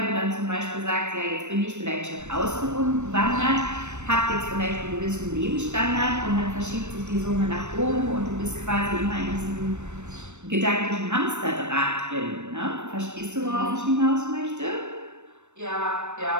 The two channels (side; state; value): left; late; 0.83 ms